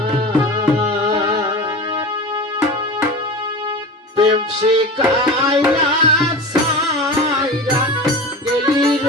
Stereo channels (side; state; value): both; normal; correlation 0.30